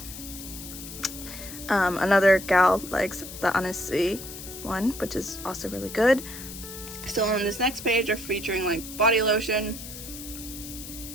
Another gal likes the Inossi one, which is also really good. So on this next page are featuring like body lotion.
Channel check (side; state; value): left; noise; hiss, 12 dB below the sound